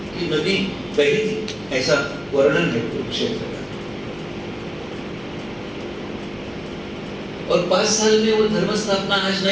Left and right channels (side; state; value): left; noise; hum, 26 dB below the sound